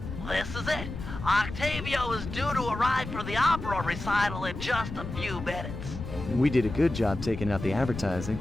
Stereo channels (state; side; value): noise; left; rumble, 8 dB below the sound